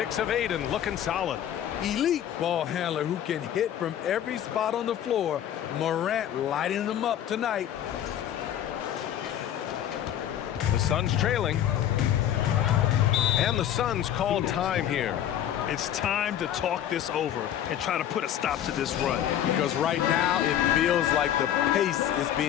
of 8 and looking solid. Elite ball handler who can hit from every spot on the floor. Morant lighting them up tonight. The Suns trailing. And And the Suns call time here. It's time to talk this over and try to put a stop to this run. Because right now it feels like the pace is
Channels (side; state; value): right; quieter; 10.8 dB